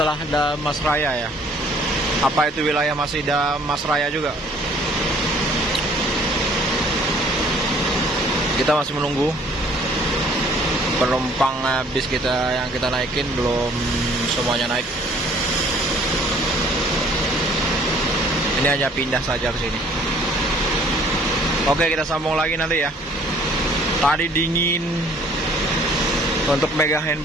ada Mas Raya ya. Apa itu wilayah masih ada Mas Raya juga? Kita masih menunggu penumpang bis kita yang kita naikin, belum semuanya naik. Ini hanya pindah saja ke sini. Oke, kita sambung lagi nanti ya. Tadi dingin, untuk megang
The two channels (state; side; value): normal; both; correlation 0.57